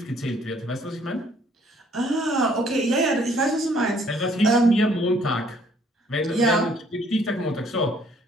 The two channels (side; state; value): both; normal; correlation 0.62